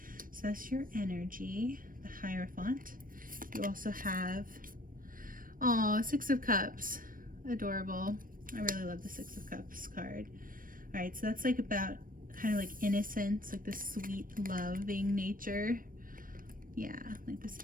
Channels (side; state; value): left; late; 0.40 ms